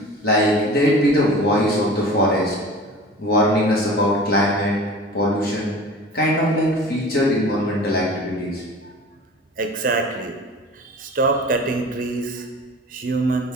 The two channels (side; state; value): both; normal; correlation 0.39